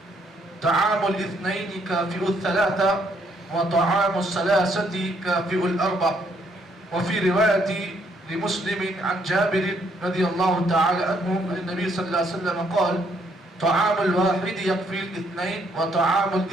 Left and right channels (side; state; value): both; normal; correlation 0.70